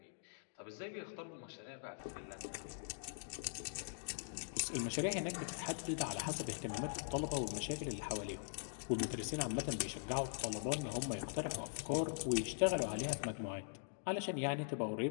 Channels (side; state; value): right; silent; digital silence